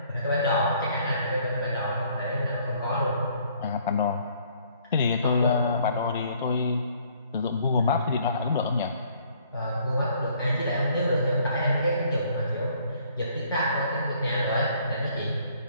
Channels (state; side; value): inverted; both; correlation -0.62